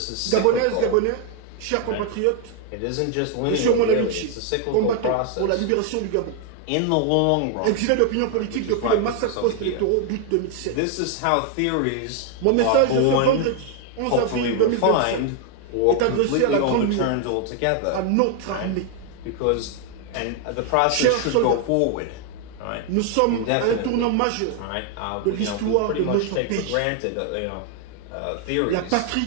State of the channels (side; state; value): both; different; correlation 0.00